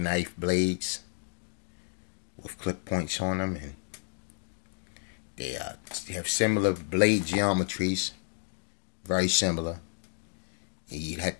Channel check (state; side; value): silent; right; 57 dB below the other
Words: blades with clip points on them, and they have similar blade geometries, very similar. And you'd have